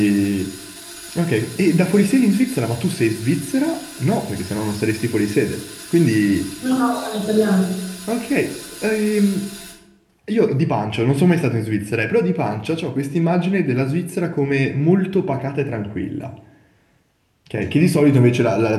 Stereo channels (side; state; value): both; identical; correlation 1.00